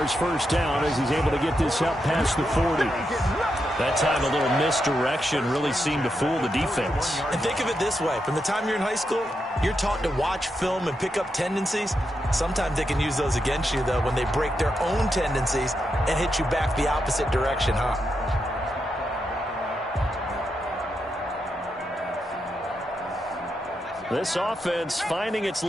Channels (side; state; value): both; normal; correlation 0.84